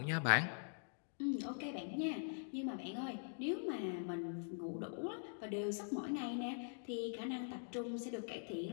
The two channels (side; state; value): right; silent; digital silence